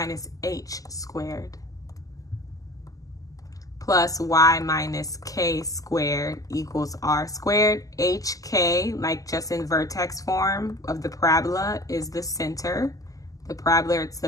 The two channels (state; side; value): late; right; 0.17 ms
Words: h squared plus y minus k squared equals r squared. HK, like just in vertex form of the parabola, is the center. The parabola, it's